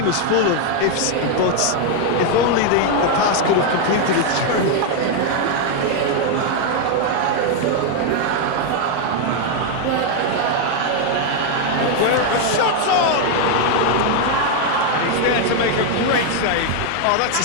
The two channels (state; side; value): different; both; correlation 0.01